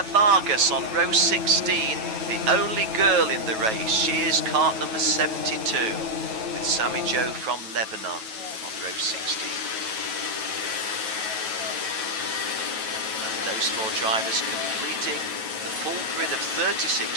Vargas on row 16, the only girl in the race. She is cart number 72 with Sami Jo from Lebanon on row 16. And those 4 drivers completing the full grid of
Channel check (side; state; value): left; late; 9.2 ms